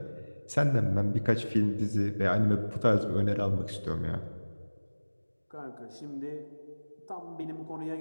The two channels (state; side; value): inverted; both; correlation -1.00